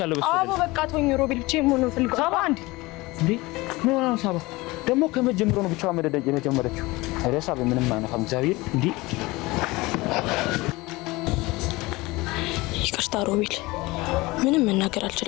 በሱ። አቦ በቃ ተወኝ ሮቤል ብቻዬን መሆን ነው ፈልገው። ሳባ እንዴ ምን ሆነ ሳባ? ደግሞ ከመጀመሩ ነው ብቻዋ መደደጅ የጀመረችው። አረ ሳቢ ምንም አይነፋም እግዚአብሔር። እንዴ ይቅርታ ሮቤል፣ ምንም መናገር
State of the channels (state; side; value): quieter; right; 21.7 dB